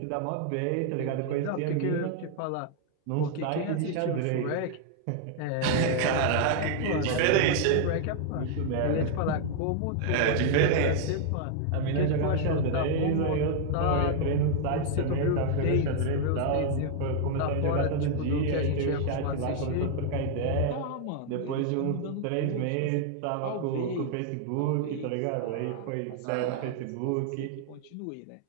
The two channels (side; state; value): both; different; correlation 0.00